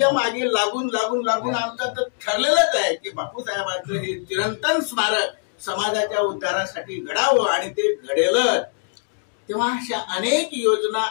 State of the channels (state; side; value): silent; right; digital silence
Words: मागे लागून लागून लागून आमचं तर ठरलेलंच आहे की बापूसाहेबांचं हे चिरंतन स्मारक समाजाच्या उद्धारासाठी घडावं आणि ते घडेल। तेव्हा अशा अनेक योजना